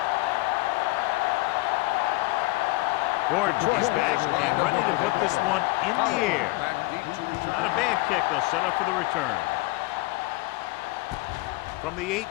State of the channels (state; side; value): quieter; right; 22.1 dB